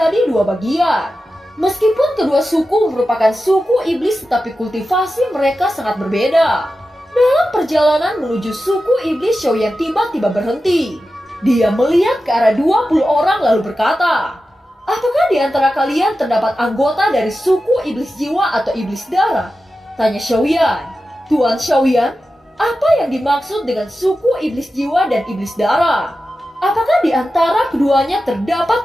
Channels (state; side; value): normal; both; correlation 0.92